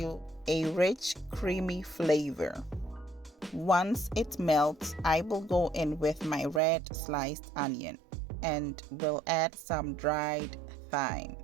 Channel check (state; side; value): drops out; left; at 6.6 s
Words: a rich, creamy flavor. Once it melts, I will go in with my red sliced onion and will add some dried thyme